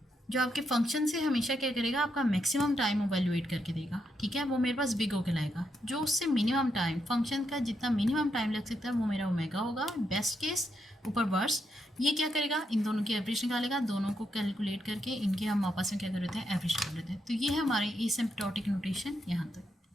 जो आपके फंक्शन से हमेशा क्या करेगा, आपका मैक्सिमम टाइम इवैल्यूएट करके देगा, ठीक है, वो मेरे पास बिग O कहलाएगा। जो उससे मिनिमम टाइम, फंक्शन का जितना मिनिमम टाइम लग सकता है वो मेरा ओमेगा होगा, बेस्ट केस ऊपर वर्स्ट। ये क्या करेगा, इन दोनों की एवरेज निकालेगा, दोनों को कैलकुलेट करके इनके हम आपस में क्या कर लेते हैं, एवरेज कर लेते हैं। तो ये है हमारे एसिम्प्टोटिक नोटेशन यहाँ तक।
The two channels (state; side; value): normal; both; correlation 0.81